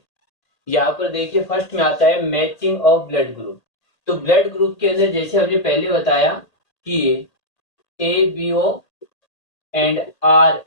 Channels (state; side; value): late; right; 1.8 ms